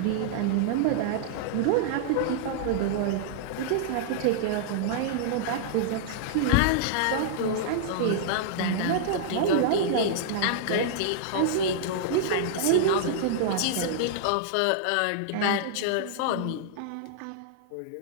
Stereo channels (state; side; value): different; both; correlation -0.01